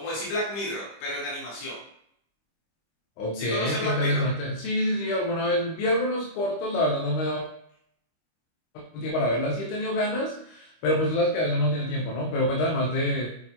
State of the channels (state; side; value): late; right; 25 ms